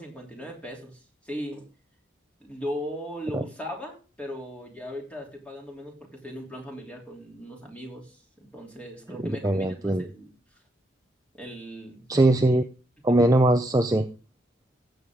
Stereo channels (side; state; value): both; normal; correlation 0.79